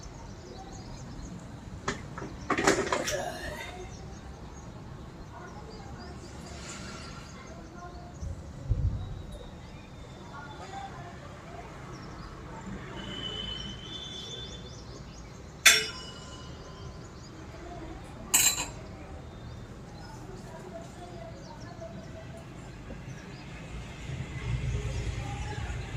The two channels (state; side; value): identical; both; correlation 1.00